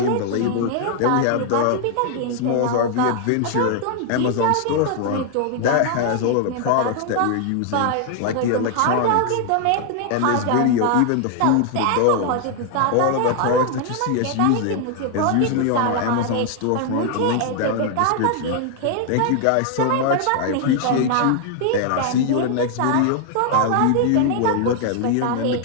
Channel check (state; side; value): different; both; correlation 0.00